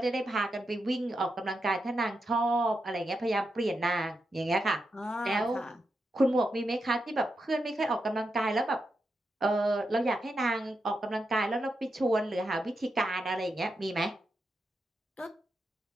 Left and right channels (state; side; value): normal; both; correlation 0.86